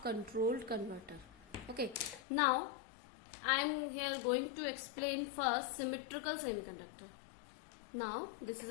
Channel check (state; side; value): drops out; right; at 2.2 s